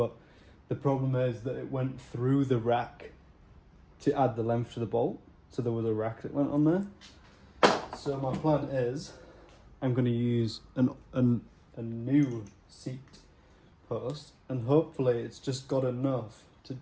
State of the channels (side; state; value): both; identical; correlation 1.00